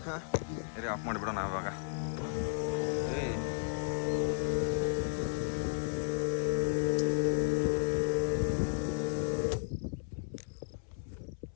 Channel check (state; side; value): silent; right; 55 dB below the other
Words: ಹಾಂ ಸರಿ, ಆಫ್ ಮಾಡಿಬಿಡೋಣ ಇವಾಗ.